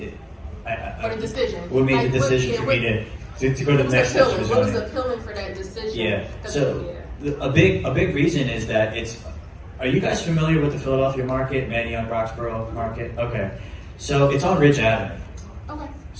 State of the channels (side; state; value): both; identical; correlation 1.00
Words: For the decision. what made Like, the decision for me to go to the next steps for What was zoning? appealing for that decision? Yeah. 'Cause, So a big reason is that are you guys familiar with the Philadelphia market, Manayunk, Roxborough market? Okay. So it's on Ridge Avenue. Okay.